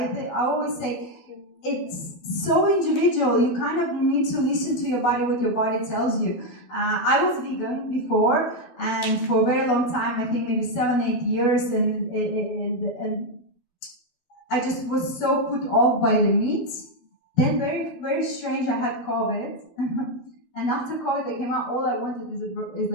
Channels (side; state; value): right; late; 12 ms